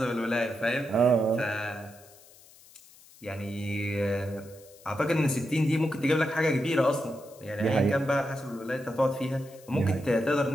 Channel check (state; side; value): noise; left; hiss, 24 dB below the sound